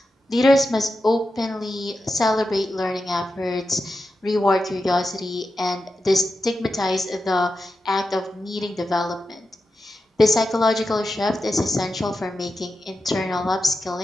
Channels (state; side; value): normal; both; correlation 0.90